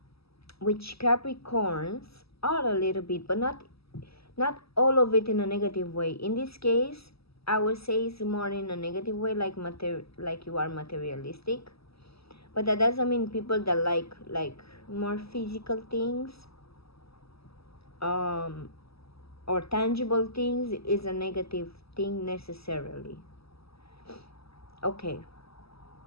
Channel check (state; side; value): late; right; 0.77 ms